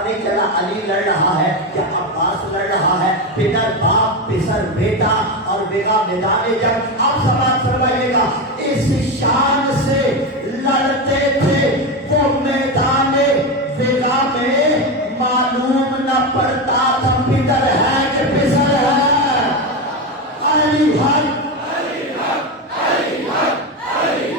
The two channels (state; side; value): normal; both; correlation 0.15